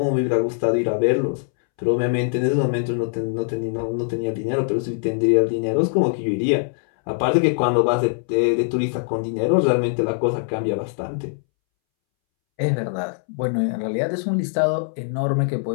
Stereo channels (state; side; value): silent; right; 64 dB below the other